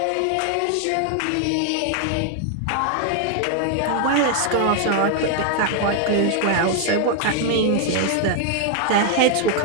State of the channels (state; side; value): different; both; correlation 0.00